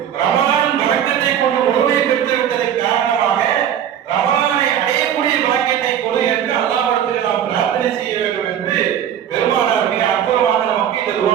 ரமலான் பரக்கத்தை கொண்டு முழுமையை பெற்று விட்டதன் காரணமாக ரமலானை அடையக்கூடிய பாக்கியத்தை கொடு என்று அல்லாஹ்விடத்தில் நாம் பிரார்த்தனை செய்ய வேண்டும் என்று பெருமானார் மிக அற்புதமாக நமக்கு இந்த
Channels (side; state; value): left; quieter; 9.7 dB